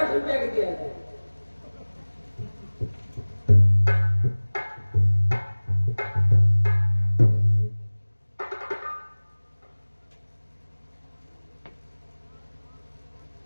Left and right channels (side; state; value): both; inverted; correlation -1.00